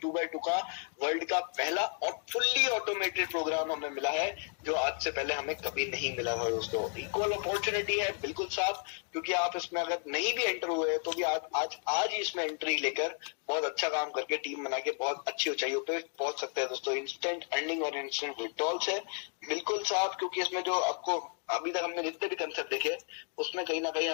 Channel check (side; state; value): right; quieter; 39.3 dB